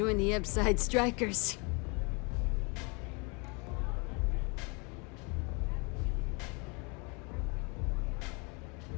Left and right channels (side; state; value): right; quieter; 31.5 dB